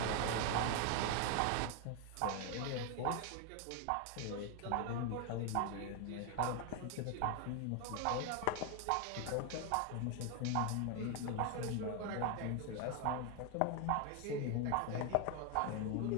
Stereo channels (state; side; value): different; both; correlation 0.01